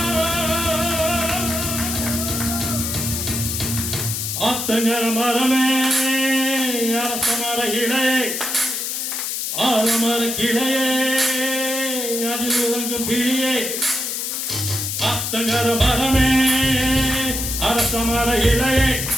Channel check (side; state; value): left; noise; hiss, 2 dB below the sound